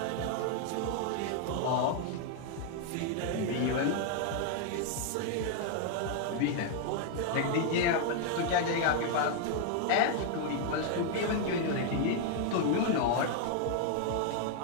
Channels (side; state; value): both; different; correlation 0.00